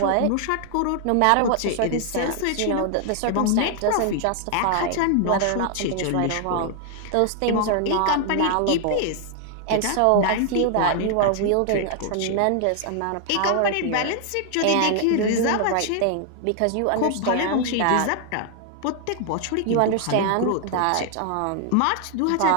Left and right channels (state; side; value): different; both; correlation 0.00